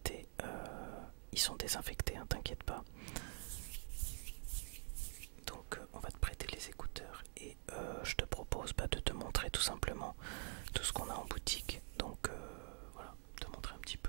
Ils sont désinfectés, hein, t'inquiète pas. Donc on va te prêter les écouteurs et je te propose de te montrer tout simplement tout ce qu'on a en boutique. Donc voilà, te montrer un petit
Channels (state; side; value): quieter; left; 39.6 dB